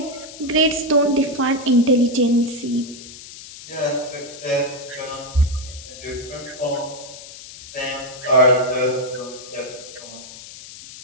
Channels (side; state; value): left; noise; hiss, 15 dB below the sound